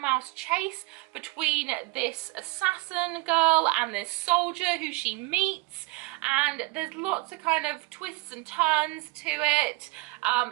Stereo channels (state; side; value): quieter; left; 23.9 dB